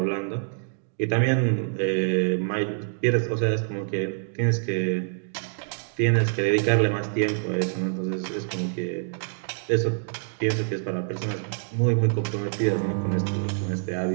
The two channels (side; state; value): left; silent; digital silence